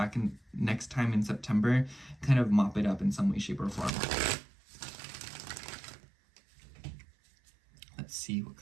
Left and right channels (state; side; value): drops out; left; at 3.9 s